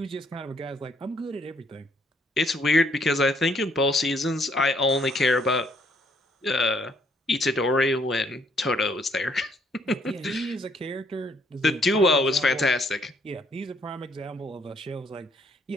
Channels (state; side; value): normal; both; correlation 0.68